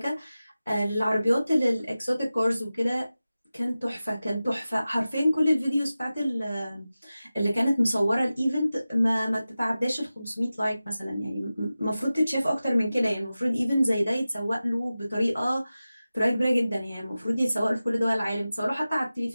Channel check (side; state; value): both; inverted; correlation -0.95